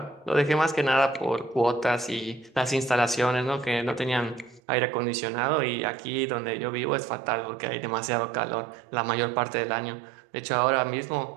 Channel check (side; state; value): left; drops out; at 4.6 s